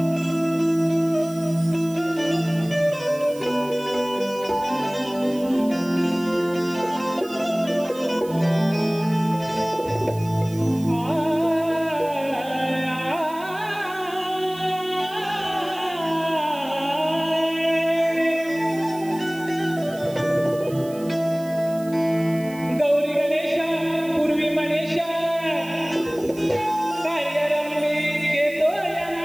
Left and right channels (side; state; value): right; noise; hiss, 20 dB below the sound